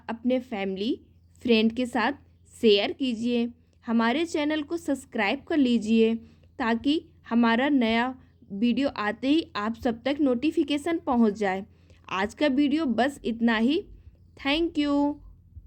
अपने फैमिली फ्रेंड के साथ शेयर कीजिए। हमारे चैनल को सब्सक्राइब कर लीजिए ताकि हमारा नया वीडियो आते ही आप सब तक नोटिफिकेशन पहुंच जाए। आज का वीडियो बस इतना ही। Thank you.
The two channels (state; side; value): identical; both; correlation 1.00